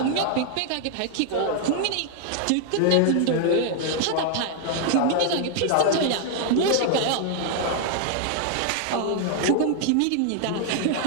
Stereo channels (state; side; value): different; both; correlation 0.00